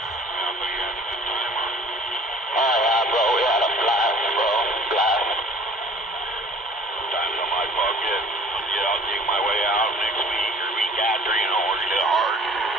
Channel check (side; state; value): both; normal; correlation 0.51